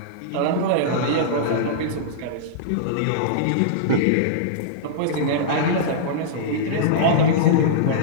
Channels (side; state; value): both; different; correlation -0.03